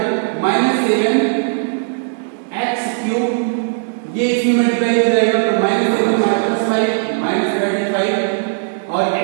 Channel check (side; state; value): left; silent; digital silence